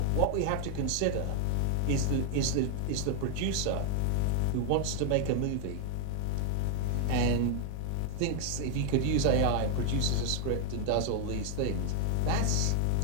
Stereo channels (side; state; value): both; different; correlation 0.00